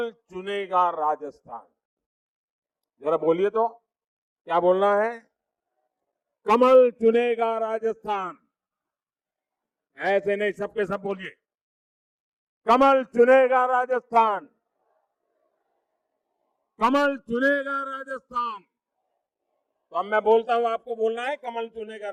चुनेगा राजस्थान। जरा बोलिए तो, क्या बोलना है? कमल चुनेगा राजस्थान। ऐसे नहीं, सबके सब बोलिए, कमल चुनेगा राजस्थान, कमल चुनेगा राजस्थान। तो अब मैं बोलता हूं, आपको बोलना है, कमल चुनेगा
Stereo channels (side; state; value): both; identical; correlation 1.00